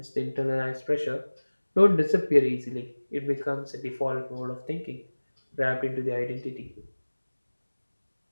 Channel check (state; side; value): inverted; both; correlation -1.00